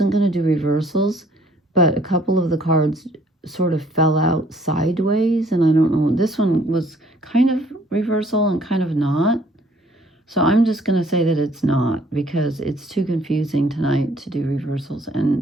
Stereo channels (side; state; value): both; normal; correlation 0.60